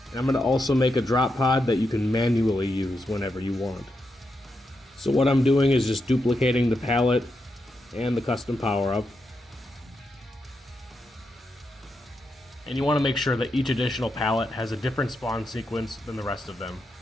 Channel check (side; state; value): both; normal; correlation 0.85